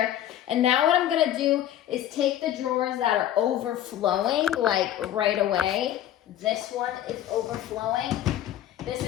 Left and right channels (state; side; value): quieter; right; 11.8 dB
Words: and now what I'm gonna do is take the drawers that are overflowing, like right away. This one is overflowing. This